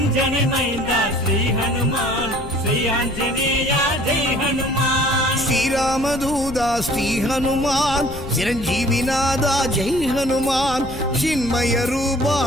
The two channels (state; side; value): noise; left; rumble, 11 dB below the sound